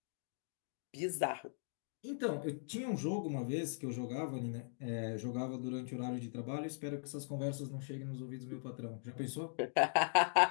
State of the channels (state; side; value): silent; right; digital silence